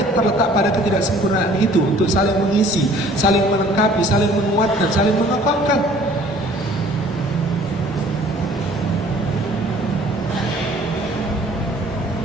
terletak pada ketidaksempurnaan itu untuk saling mengisi, saling melengkapi, saling menguatkan, saling mengokohkan.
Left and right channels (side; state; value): both; normal; correlation 0.53